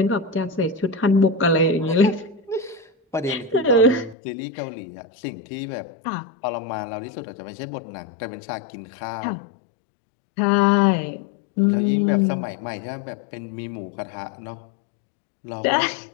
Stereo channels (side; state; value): right; drops out; at 4.2 s